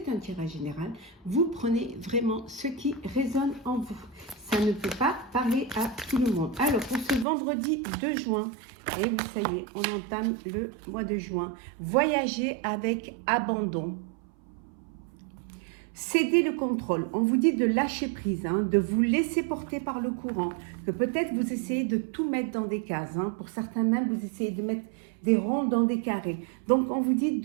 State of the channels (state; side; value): drops out; left; at 7.2 s